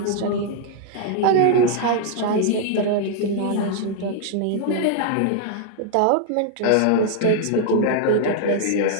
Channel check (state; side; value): different; both; correlation 0.00